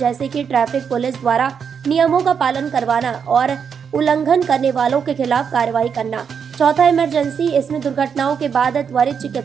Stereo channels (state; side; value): quieter; left; 6.9 dB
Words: कि ट्रैफिक पुलिस द्वारा नियमों का पालन करवाना और उल्लंघन करने वालों के खिलाफ कार्रवाई करना। चौथा इमरजेंसी, इसमें दुर्घटनाओं के बाद त्वरित